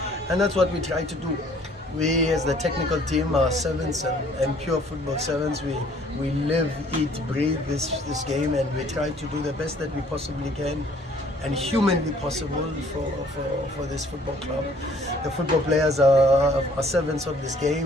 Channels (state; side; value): normal; both; correlation 0.58